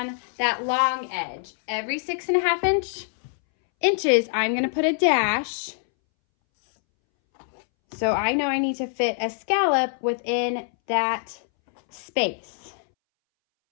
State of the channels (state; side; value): silent; right; 62 dB below the other